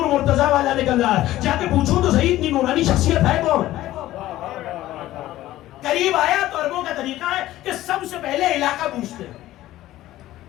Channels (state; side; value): quieter; right; 15.1 dB